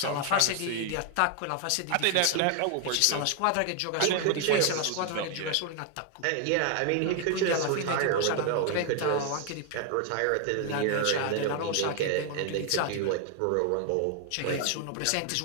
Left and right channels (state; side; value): different; both; correlation 0.00